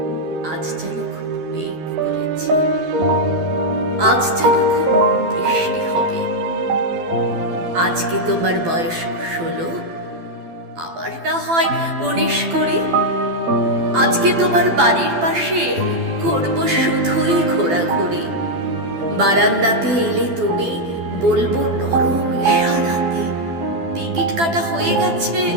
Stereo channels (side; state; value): left; late; 12 ms